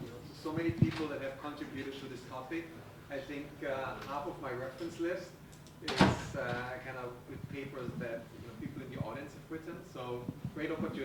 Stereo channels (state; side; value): identical; both; correlation 1.00